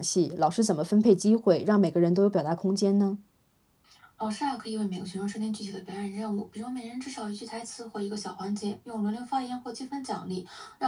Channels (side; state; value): both; identical; correlation 1.00